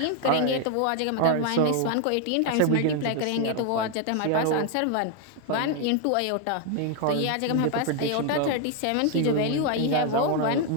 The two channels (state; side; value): different; both; correlation 0.01